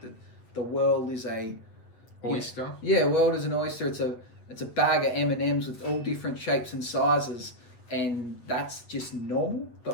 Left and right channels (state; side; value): late; right; 8.2 ms